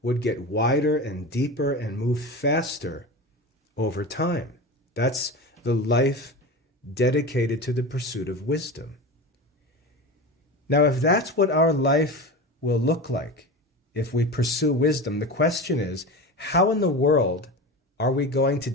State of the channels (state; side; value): normal; both; correlation 0.27